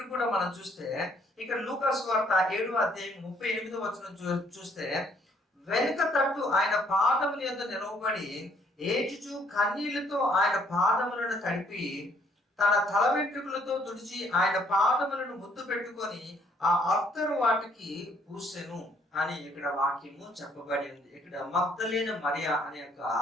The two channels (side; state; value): both; normal; correlation 0.65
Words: కూడా మనం చూస్తే, ఇక్కడ లూకా సువార్త 7వ అధ్యాయం 38వ వచనం చూస్తే, వెనుక తట్టు ఆయన పాదముల యొద్ద నిలవబడి ఏడ్చుచు కన్నీళ్లతో ఆయన పాదములను తడిపి తన తల వెంట్రుకలతో తుడిచి ఆయన పాదములను ముద్దు పెట్టుకొని ఆ అత్తరు వాటికి పూసెను అని ఇక్కడ వాక్యము చెప్పబడి ఉంది. ఇక్కడ మగ్దలేన మరియా అనే యొక్క